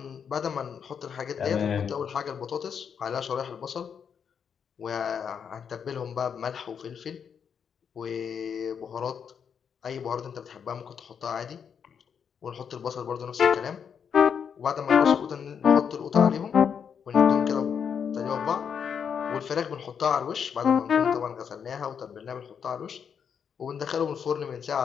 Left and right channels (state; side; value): quieter; right; 7.2 dB